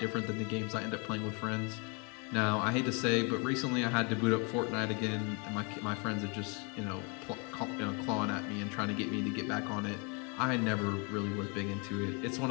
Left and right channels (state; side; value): quieter; right; 33.6 dB